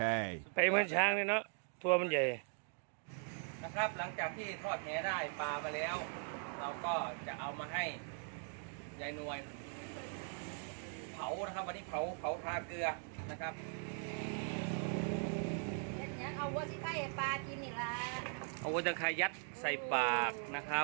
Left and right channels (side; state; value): left; silent; 51 dB below the other